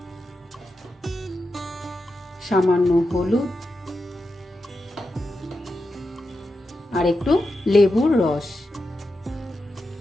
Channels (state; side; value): normal; both; correlation 0.89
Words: সামান্য হলুদ আর একটু লেবুর রস।